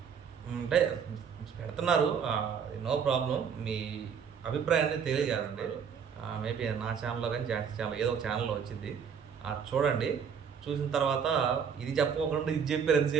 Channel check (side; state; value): left; quieter; 7.0 dB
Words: అంటే పెడుతున్నారు, నో ప్రాబ్లం. మీ అభిప్రాయాన్ని తెలియజేయండి. మేబీ నా ఛానల్లో కానీ జాన్సీ ఛానల్ ఏదో ఒక ఛానల్లో వచ్చింది, చూడండి. చూసిన తర్వాత ఇది చెప్పకుండా ఇది చెప్పారు